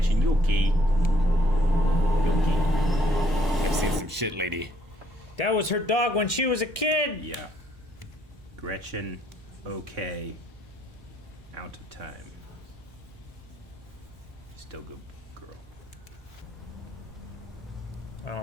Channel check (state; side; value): normal; both; correlation 0.67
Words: you okay? You okay? I've seen some shit, lady. That was her dog when she was a kid. Yeah. Gretchen, okay. Out of time. Still good girl.